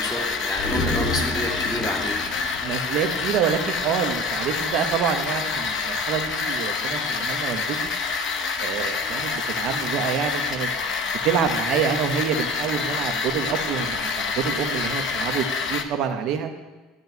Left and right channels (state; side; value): normal; both; correlation 0.37